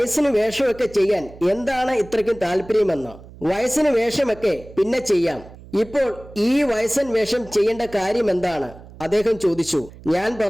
വേഷമൊക്കെ ചെയ്യാൻ എന്താണ് ഇത്രയ്ക്കും താല്പര്യമെന്ന്. വയസ്സിന് വേഷമൊക്കെ പിന്നെ ചെയ്യാം, ഇപ്പോൾ ഈ വയസ്സൻ വേഷം ചെയ്യേണ്ട കാര്യം എന്താണ്? അദ്ദേഹം ചോദിച്ചു. ഞാൻ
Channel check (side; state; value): right; noise; hum, 19 dB below the sound